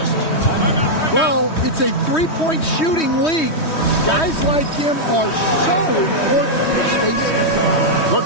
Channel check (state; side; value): late; right; 3.2 ms